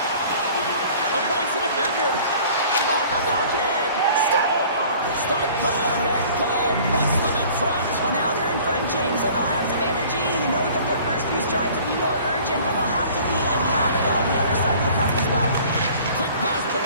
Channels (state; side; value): inverted; both; correlation -0.49